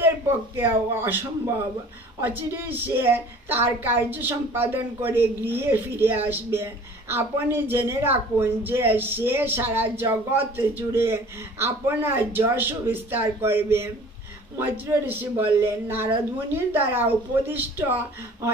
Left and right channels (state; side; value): normal; both; correlation 0.47